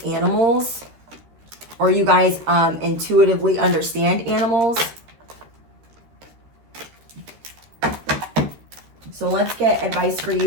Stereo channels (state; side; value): late; left; 13 ms